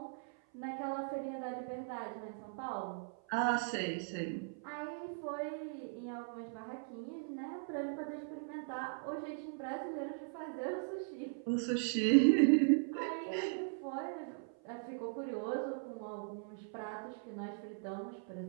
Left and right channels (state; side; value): silent; left; 52 dB below the other